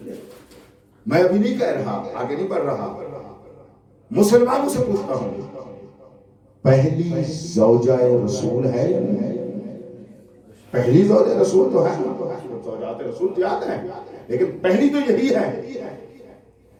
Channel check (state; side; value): identical; both; correlation 1.00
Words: کیا؟ میں ابھی نہیں کہہ رہا، آگے نہیں بڑھ رہا، مسلمانوں سے پوچھتا ہوں، پہلی زوجہ رسول ہے یا نہیں؟ پہلی زوجہ رسول تو ہے، زوجات رسول زیادہ ہیں لیکن پہلی تو یہی ہے۔